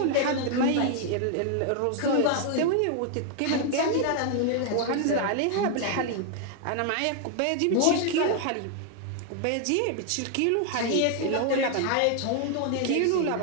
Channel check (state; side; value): different; both; correlation 0.00